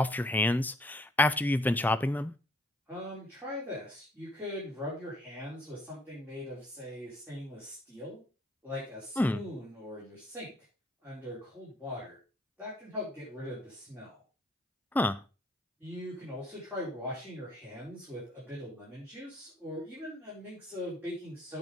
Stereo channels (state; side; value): normal; both; correlation 0.64